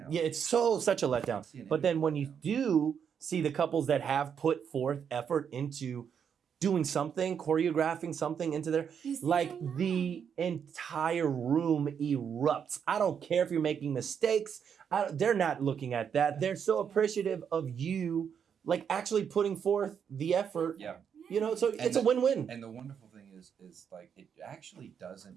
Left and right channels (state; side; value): quieter; left; 7.6 dB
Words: Yeah, it's such a letdown. See an But then image when you letdown. do see the couples that have put forth effort into doing something, choreographing something into their, You see, like I know. the entire room erupts. I don't care if you're making mistakes. They're not looking at that. They're so appreciative of you, like actually putting forth the effort. Yeah. So it's a win-win. And the wonderful thing is like it actually